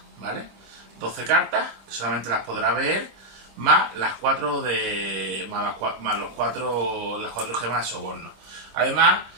¿vale? 12 cartas, que solamente las podrá ver, más las 4 las 4 gemas de soborno. Además,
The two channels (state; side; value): late; left; 25 ms